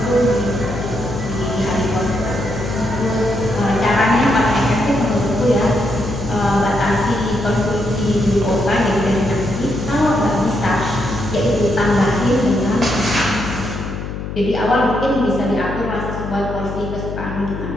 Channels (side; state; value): left; noise; hum, 7 dB below the sound